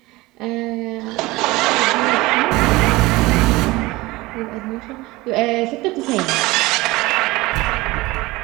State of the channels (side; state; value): left; quieter; 20.7 dB